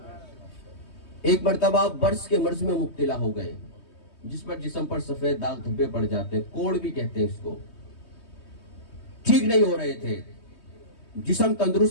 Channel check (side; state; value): right; late; 3.2 ms